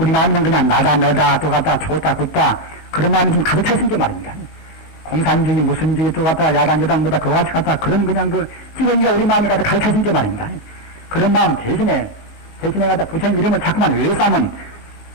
마음은 그냥 나다 내다 또 갖다 좋다 굳다 그런 마음이 좀 가득 차 있는 게 말입니다. 공산주의 무슨 주의 또 갖다 야당 뭐다 그와 같이 갖다 그런 그냥 찌르기가 우리 마음에 갖다 가득 차 있는 게 말입니다. 그런 마음 대신에 갖다 부처님 이름을 자꾸만 외워서 하면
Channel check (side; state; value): right; late; 20 ms